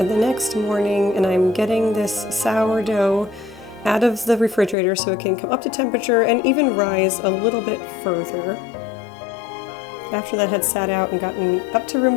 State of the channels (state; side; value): drops out; right; at 4.8 s